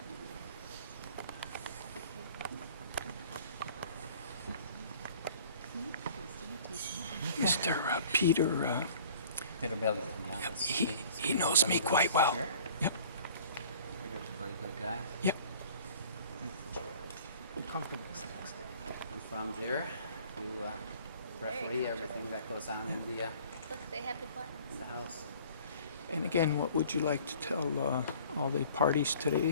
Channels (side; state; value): both; inverted; correlation -0.50